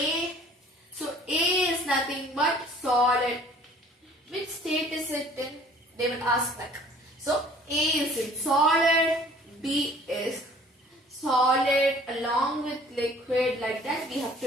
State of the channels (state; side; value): normal; both; correlation 0.53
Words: So A is nothing but solid. Which state is it in? They will ask like. So A is in solid, B is solid along with liquid, like that we have